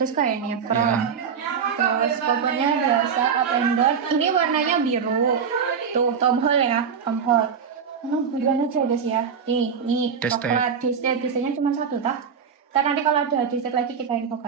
sekali ini ya crown. Terus covernya biasa up and down. Ini warnanya biru. Tuh Tom Hall ya, Tom Hall. Buruan aja guys ya. Nih coklat. Desainnya cuma satu tak? Ntar nanti kalau ada desain lagi kita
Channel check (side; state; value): left; quieter; 6.6 dB